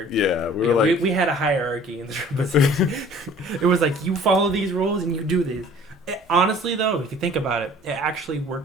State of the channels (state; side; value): normal; both; correlation 0.50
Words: Yeah, we Yeah, were like. we had a hierarchy in the trumpet section. It was like you follow these rules and you do these. Honestly, though, if you think about it, it actually